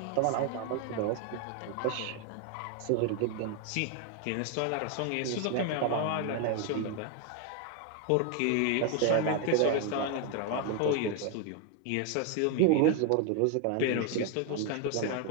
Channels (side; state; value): both; different; correlation 0.01